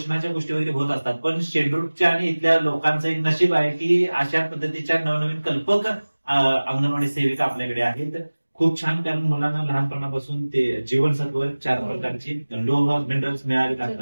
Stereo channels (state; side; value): inverted; both; correlation -1.00